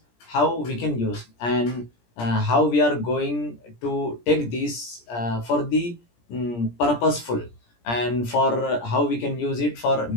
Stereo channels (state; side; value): late; right; 17 ms